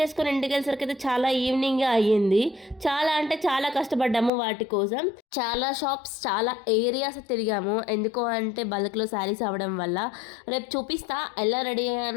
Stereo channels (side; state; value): right; drops out; at 4.3 s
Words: ఇంటికి వెళ్ళేసరికి అయితే చాలా ఈవినింగ్గా అయ్యింది. చాలా అంటే చాలా కష్టపడ్డాము వాటి కోసం. చాలా షాప్స్, చాలా ఏరియాస్ తిరిగాము. ఎందుకో అంటే బల్క్లో శారీస్ అవ్వడం వల్ల. రేపు చూపిస్తా ఎలా రెడీ